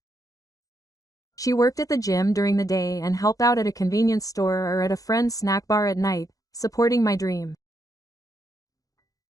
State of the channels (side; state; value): right; late; 0.17 ms